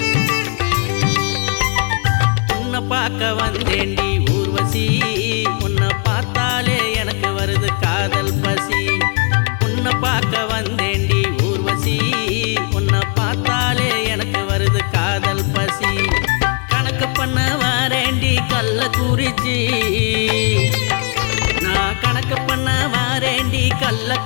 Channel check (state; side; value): quieter; right; 37.3 dB